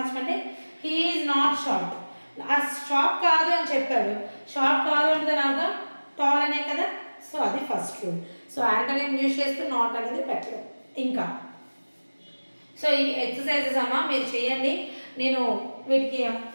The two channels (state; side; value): inverted; both; correlation -1.00